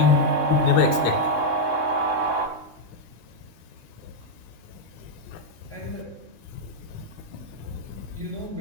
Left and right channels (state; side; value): late; right; 3.6 ms